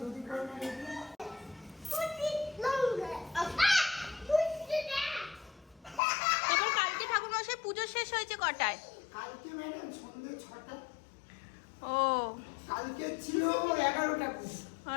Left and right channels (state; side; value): drops out; right; at 6.0 s